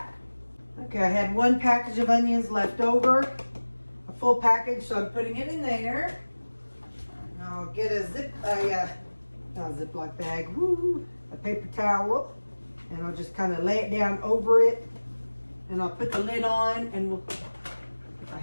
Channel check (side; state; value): both; inverted; correlation -1.00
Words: Okay, I had one package of onions left over, a full package, so I'm putting it in there. And I'll get a Ziploc bag, a paper towel, and I'll just kind of lay it down over it, and I'll put the lid on, and if I